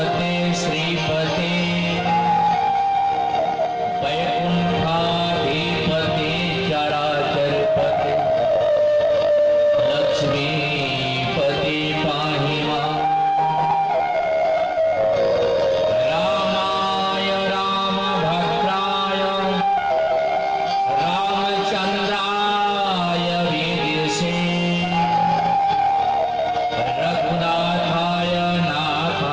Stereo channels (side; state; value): both; identical; correlation 1.00